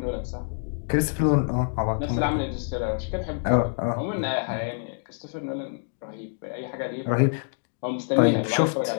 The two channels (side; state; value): right; silent; digital silence